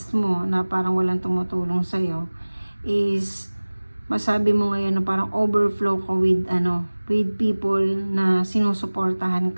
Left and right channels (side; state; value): both; inverted; correlation -1.00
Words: mo na parang walang tumutulong sa'yo is masabi mo ngayon na parang overflow ka with people na sinusuportahan